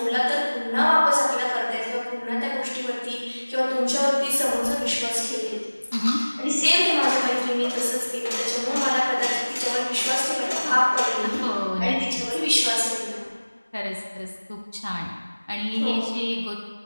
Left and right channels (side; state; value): both; inverted; correlation -1.00